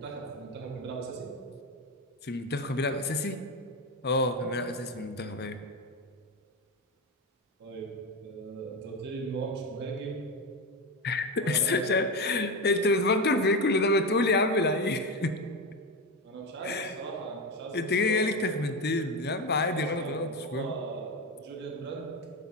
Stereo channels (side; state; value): both; normal; correlation 0.16